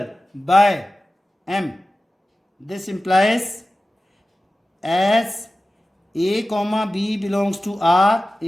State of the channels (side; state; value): both; normal; correlation 0.96